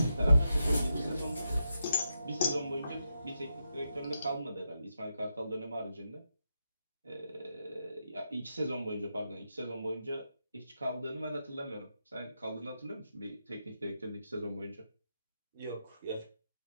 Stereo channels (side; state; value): both; inverted; correlation -0.85